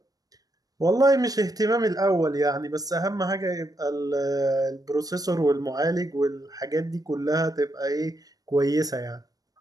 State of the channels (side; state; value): left; late; 0.18 ms